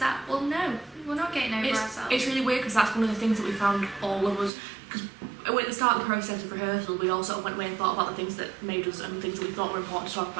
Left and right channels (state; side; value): drops out; left; at 4.5 s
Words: Well, no, we're not getting over ourselves. It's really weird because that's one of the things that we found, all of us, because at the start of the process of rehearsal we all sort of went away and thought about the things that made us and things that we thought were important to talk